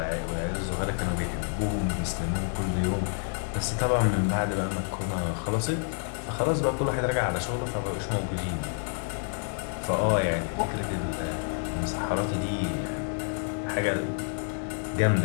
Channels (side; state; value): right; silent; 59 dB below the other